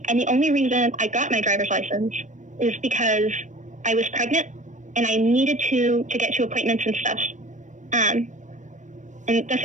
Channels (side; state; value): left; late; 0.36 ms